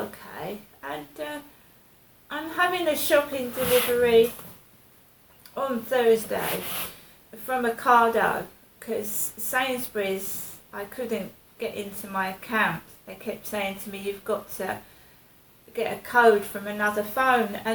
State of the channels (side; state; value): both; identical; correlation 1.00